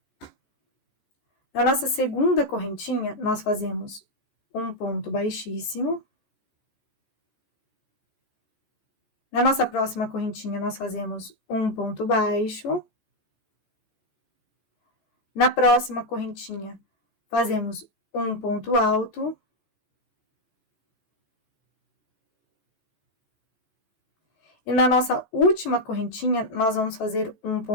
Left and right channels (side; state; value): right; late; 14 ms